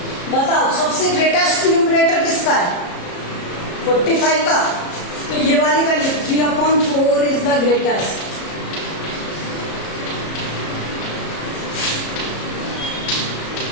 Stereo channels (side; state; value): right; late; 33 ms